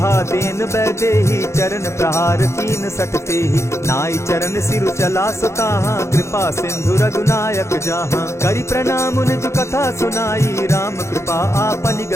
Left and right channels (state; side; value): late; right; 0.13 ms